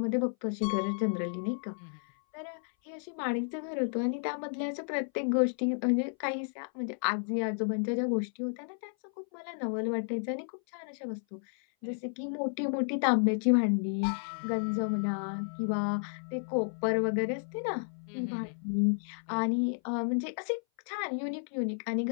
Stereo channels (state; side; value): silent; right; 56 dB below the other